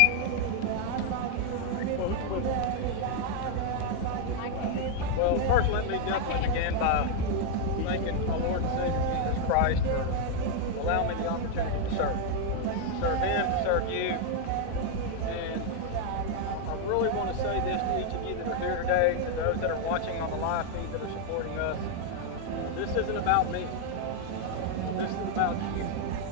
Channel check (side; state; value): both; different; correlation 0.00